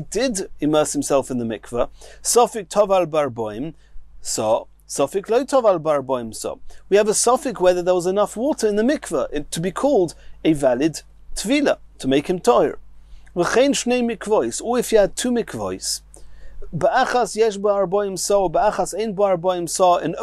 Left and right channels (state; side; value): identical; both; correlation 1.00